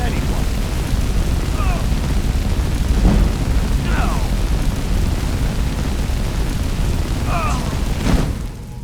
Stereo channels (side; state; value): both; identical; correlation 1.00